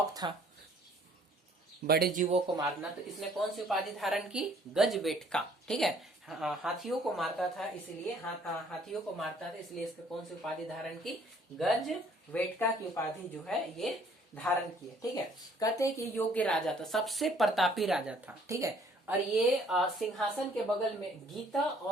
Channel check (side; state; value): both; normal; correlation 0.60